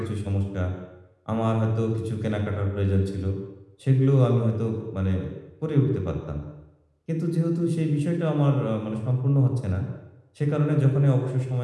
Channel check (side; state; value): both; identical; correlation 1.00